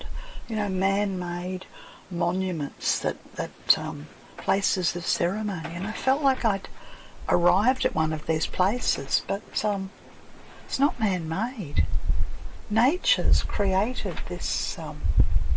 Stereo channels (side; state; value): both; identical; correlation 1.00